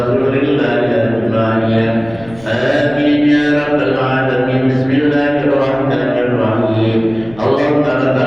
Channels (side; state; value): left; noise; rumble, 22 dB below the sound